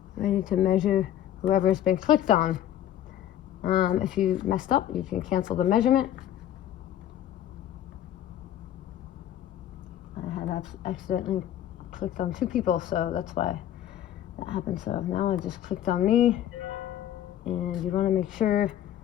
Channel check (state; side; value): quieter; right; 11.5 dB